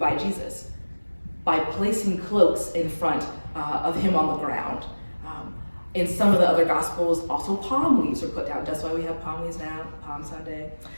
Jesus by placing cloaks in front of him on the ground. In some of the other Gospels, also palm leaves were put down. That's why we have palm leaves now, Palm Sunday.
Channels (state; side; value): inverted; both; correlation -1.00